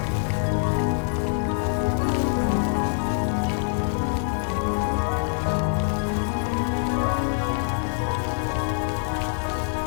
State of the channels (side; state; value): right; silent; 62 dB below the other